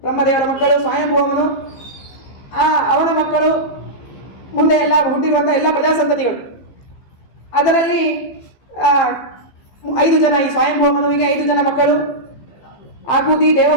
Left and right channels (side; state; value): right; late; 15 ms